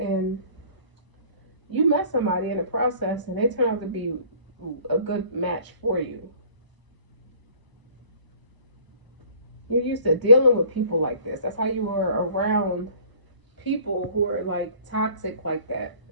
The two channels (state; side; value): late; left; 1.0 ms